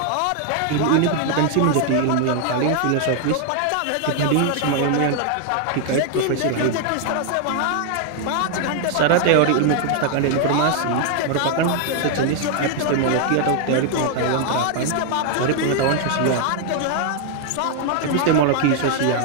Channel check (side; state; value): both; different; correlation 0.00